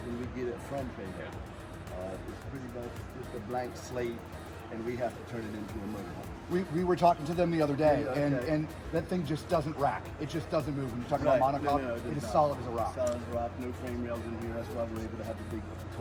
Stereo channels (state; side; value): identical; both; correlation 1.00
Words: we get it from Prevost. It's pretty much just a blank slate, and we have to turn it into a motorcoach. We were talking to them the other day, Yeah, okay. and that thing just doesn't rack. It just doesn't move. When you're talking about monocoque, it is solid as a rock. Solid as a rock, no frame rails in here. That's why we're able to have the big,